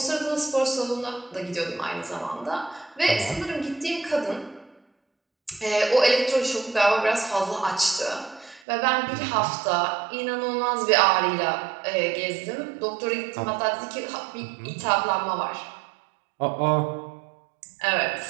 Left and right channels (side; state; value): left; drops out; at 8.6 s